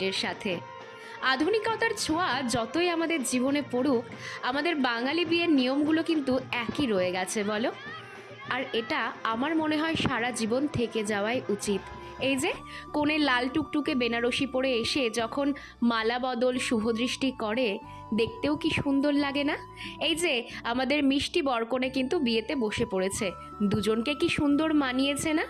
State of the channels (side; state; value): both; identical; correlation 1.00